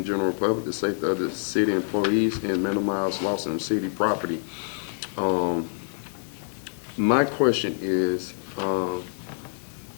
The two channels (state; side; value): silent; right; digital silence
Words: general public, the safety of the city employees, and minimize loss of city property. My question is,